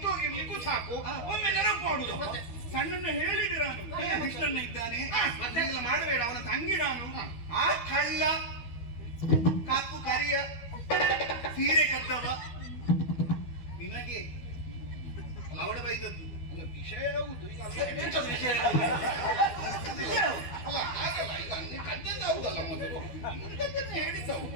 ಹೋಗಿರ್ಲಿಕ್ಕೂ ಸಾಕು, ಒಮ್ಮೆ ನೆನಪು ಮಾಡುದು. ಸಣ್ಣನ್ನ ಹೇಳಿದೆ ನಾನು, ಕೃಷ್ಣನ್ನ ಇದ್ದಾನೆ ಮತ್ತೆಲ್ಲ ಮಾಡಬೇಡ, ಅವನ ತಂಗಿ ನಾನು. ಆ ಕಳ್ಳ ಕಪ್ಪು ಕರಿಯ ಸೀರೆ ಕದ್ದವ ನಿನಗೆ ಅವಡ ಬೈದದ್ದು. ವಿಷಯ ಹೌದು. ಈಗ ಅಲ್ಲ, ಹಾಗಲ್ಲ, ಈಗ ನೀನು ಕದ್ದದ್ದು ಹೌದಲ್ಲ, ಮೊದಲು ಹೇಳಿದ್ದವು.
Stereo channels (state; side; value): late; right; 12 ms